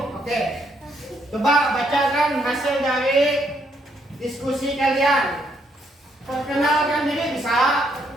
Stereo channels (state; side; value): normal; both; correlation 0.73